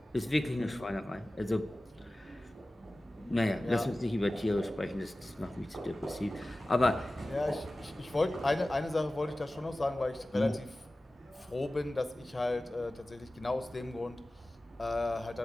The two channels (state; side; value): normal; both; correlation 0.96